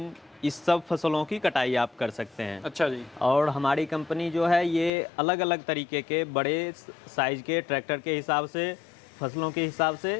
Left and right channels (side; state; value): right; drops out; at 4.9 s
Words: इस सब फसलों की कटाई आप कर सकते हैं। अच्छा जी। और हमारी कंपनी जो है ये अलग अलग तरीके के बड़े साइज के ट्रैक्टर के हिसाब से, फसलों के हिसाब से